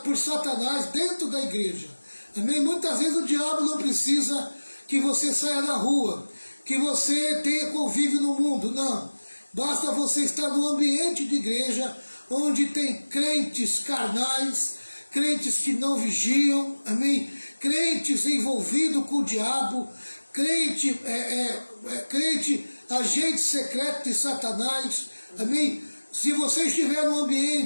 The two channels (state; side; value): inverted; both; correlation -1.00